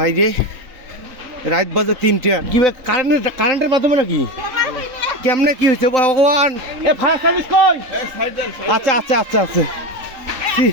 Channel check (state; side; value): late; left; 3.8 ms